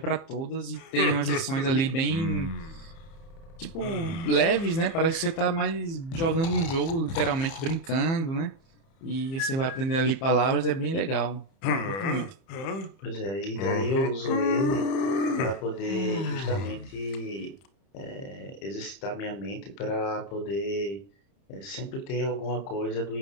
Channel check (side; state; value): right; late; 30 ms